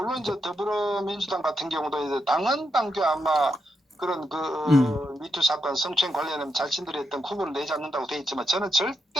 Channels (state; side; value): normal; both; correlation 0.82